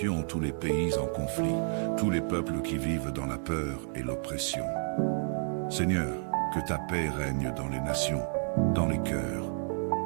tous les pays en conflit, tous les peuples qui vivent dans la peur et l'oppression. Seigneur, que ta paix règne dans les nations, dans les cœurs,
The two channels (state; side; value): silent; left; digital silence